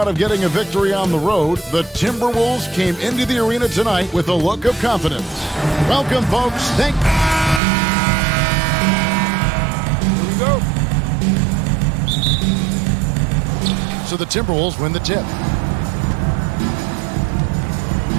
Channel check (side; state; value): left; drops out; at 7.6 s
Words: of getting a victory on the road, the Timberwolves came into the arena tonight with a look of confidence. Welcome, folks. Here we go. So the Timberwolves win the tip.